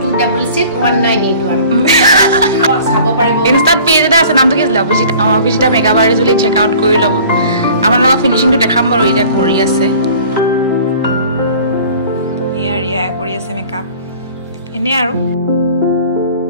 চাব পাৰিব ইনষ্টাত পেজ এটা আছে নামটো কি আছিল অভিজিতা মেকআপ আৰ্টিষ্ট বুলি চেক আউট কৰি ল'ব আমাৰ লগত ফিনিশিংটো দেখাম বাৰু এতিয়া কৰি আছে ৰিয়া কৰি আছে মেকআপ এনে আৰু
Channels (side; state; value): both; inverted; correlation -0.48